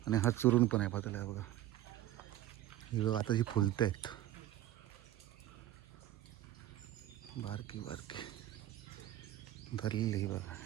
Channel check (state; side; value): quieter; left; 13.7 dB